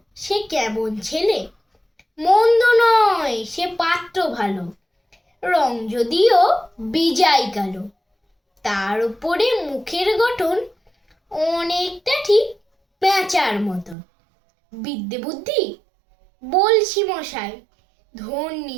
সে কেমন ছেলে। মন্দ নয় সে পাত্র ভালো, রং যদিও বিজাই কালো। তার উপরে মুখের গঠন অনেকটা ঠিক পেঁচার মতো। বিদ্যে বুদ্ধি বলছি মশাই,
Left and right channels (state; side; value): drops out; left; at 14.0 s